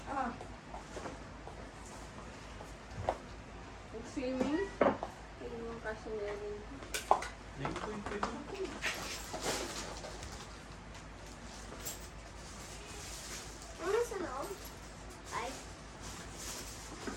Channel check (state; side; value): identical; both; correlation 1.00